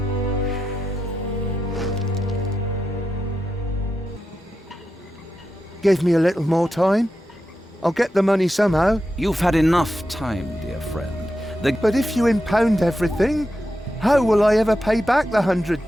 Give me a little more time. I'll get the money somehow. You've had enough time, dear friend. But if you impound everything, how will I ever pay back the 100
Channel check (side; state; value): both; normal; correlation 0.88